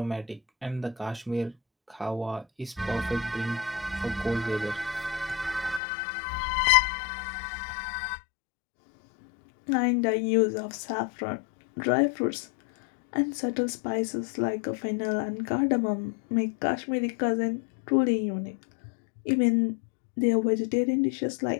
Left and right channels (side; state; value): right; drops out; at 5.8 s